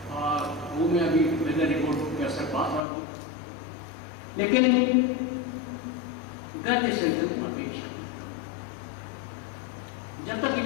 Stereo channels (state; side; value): drops out; right; at 2.8 s